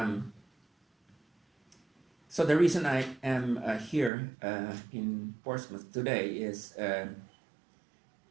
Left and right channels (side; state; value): left; drops out; at 4.1 s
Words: So the reason I am here in Portsmouth today is